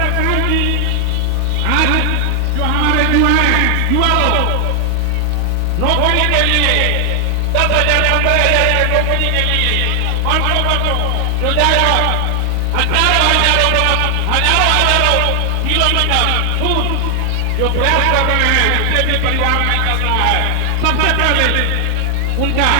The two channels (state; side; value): different; both; correlation 0.00